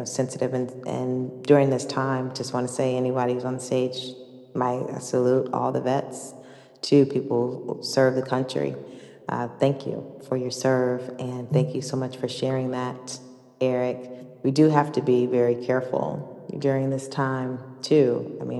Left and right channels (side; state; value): both; identical; correlation 1.00